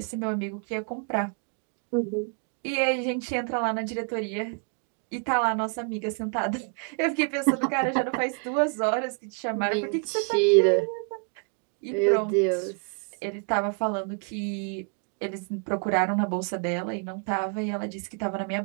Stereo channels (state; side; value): quieter; left; 40.0 dB